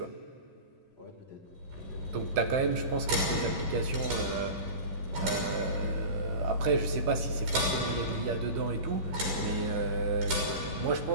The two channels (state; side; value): late; left; 11 ms